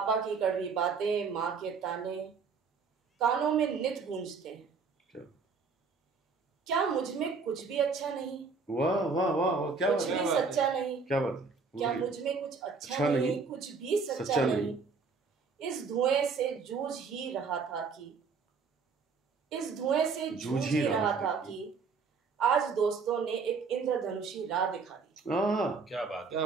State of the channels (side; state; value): left; quieter; 4.9 dB